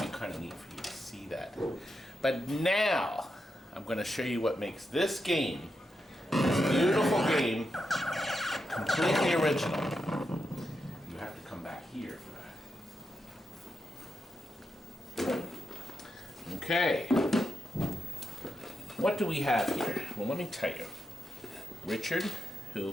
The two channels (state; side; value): normal; both; correlation 0.86